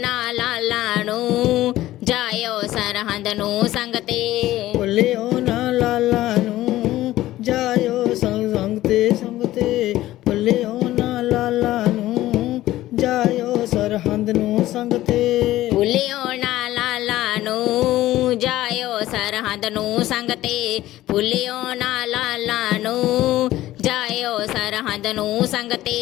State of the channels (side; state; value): right; quieter; 15.3 dB